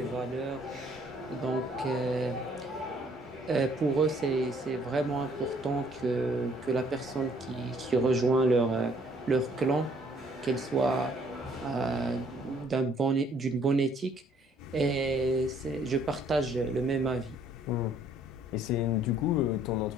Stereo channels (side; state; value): both; normal; correlation 0.62